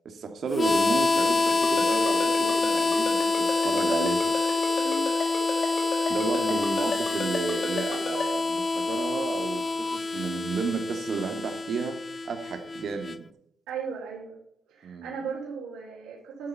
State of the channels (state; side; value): normal; both; correlation 0.89